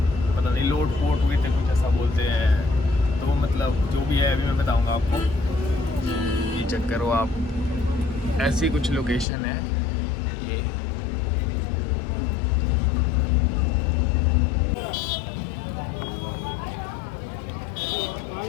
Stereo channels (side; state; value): right; drops out; at 9.2 s